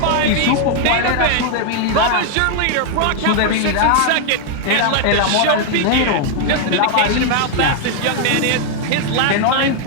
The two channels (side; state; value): both; different; correlation 0.00